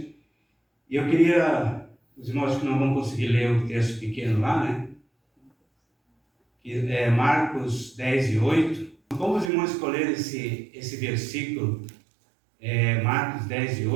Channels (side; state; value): left; drops out; at 9.5 s